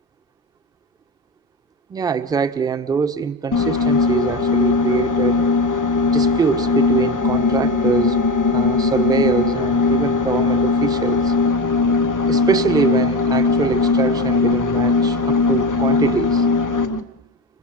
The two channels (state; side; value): normal; both; correlation 0.21